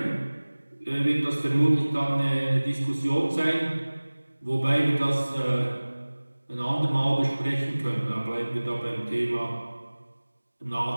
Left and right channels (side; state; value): both; inverted; correlation -1.00